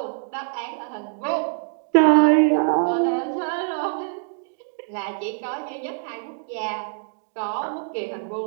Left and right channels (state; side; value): silent; left; digital silence